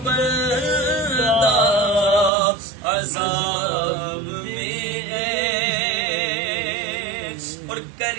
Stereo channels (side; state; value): left; drops out; at 2.3 s